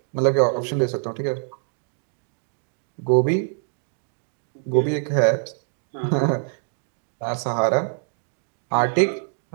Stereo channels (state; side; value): silent; left; digital silence